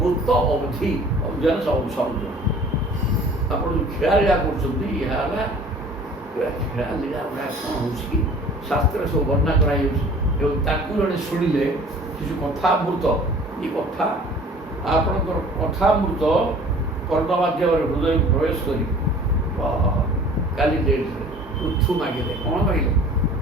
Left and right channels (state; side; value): normal; both; correlation 0.48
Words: ଅବଧି ଅଭିଯାନ ସମୁଦ୍ର। ଆପଣ ଯେଉଁ ଖେଳା ଲୀଳା କରୁଛନ୍ତି ଏହା ହେଲା ଖେଳା ଲୀଳା ଗୁଡ଼ା କ'ଣ ହେଉଛି କି ଶାସ୍ତ୍ରରେ ସବୁ ବର୍ଣ୍ଣନା କରାଯାଉଛି ଏବଂ ତାକୁ ଜଣେ ଶୁଣିଲେ ସେ ଯେଉଁ କଥାମୃତ ଏ କଥା ଆପଣଙ୍କର କଥାମୃତ କର୍ଣ୍ଣ ମାଧ୍ୟମରେ ହୃଦୟକୁ ପ୍ରବେଶ କରି କାଲି ଡେଟ୍ରେ ପୃଥୁ ମାଗିଲେ କ'ଣ ମାଗିଲେ